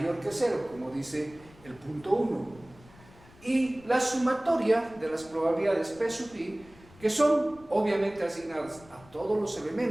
que 0, como dice el punto 1. Y la sumatoria de las probabilidades P sub i, que son obviamente asignadas a todos los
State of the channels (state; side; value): noise; left; rumble, 24 dB below the sound